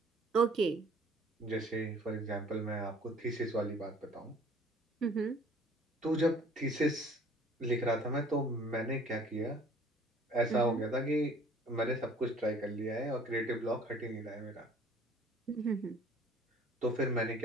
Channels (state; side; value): normal; both; correlation 0.53